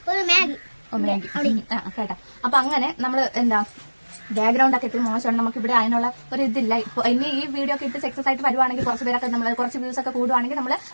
ഒരു മാഗി കേട്ടാ. അപ്പൊ അങ്ങനെ നമ്മള് എന്താ ബാക്ക്ഗ്രൗണ്ട് ഒക്കെ ഇത്തിരി മോശമാണ്. നമുക്ക് ഇവിടെ അതിനുള്ള ഒരു ഇതില്ല. ഇപ്പൊ ഇനി ഈ വീഡിയോ ഒക്കെ ഇട്ട് സക്സസ് ആയിട്ട് വരുവാണെങ്കിൽ കുറച്ച് പേരൊക്കെ നമ്മൾ കുറച്ച് വ്യൂസ് ഒക്കെ കൂടുവാണെങ്കിൽ നമ്മൾ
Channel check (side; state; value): both; inverted; correlation -1.00